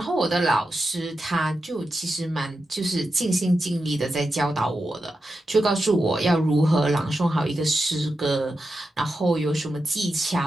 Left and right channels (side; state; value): both; normal; correlation 0.89